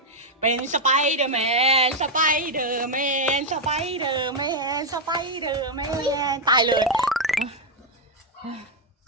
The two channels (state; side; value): normal; both; correlation 0.01